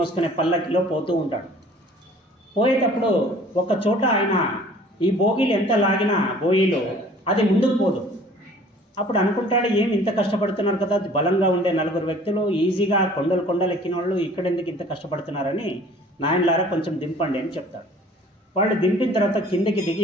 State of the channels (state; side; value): normal; both; correlation 0.51